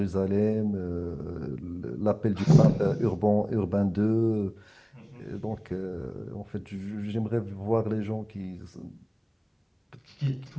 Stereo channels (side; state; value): both; identical; correlation 1.00